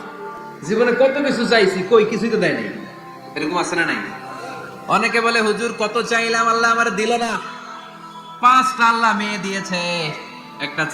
জীবনে কত কিছু চাইছি, কই কিছুই তো দেয় নাই, এরকম আছে না নাই? অনেকে বলে হুজুর কত চাইলাম আল্লাহ আমার দিল না। 5টা আল্লাহ মেয়ে দিয়েছে, একটা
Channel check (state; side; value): identical; both; correlation 1.00